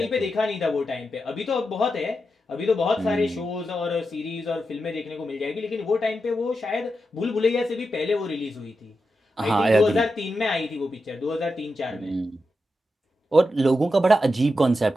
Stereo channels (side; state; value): both; normal; correlation 0.88